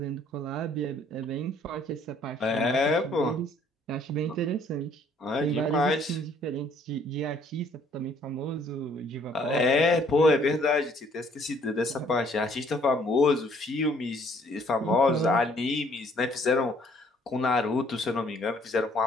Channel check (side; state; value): both; normal; correlation 0.62